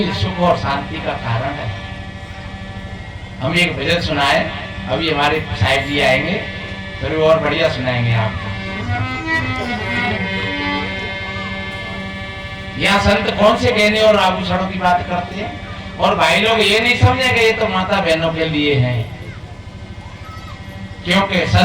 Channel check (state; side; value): identical; both; correlation 1.00